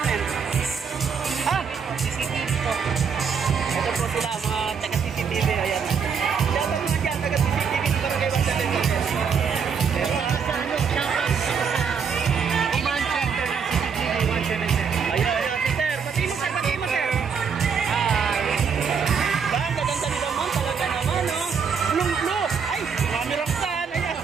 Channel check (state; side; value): quieter; left; 6.3 dB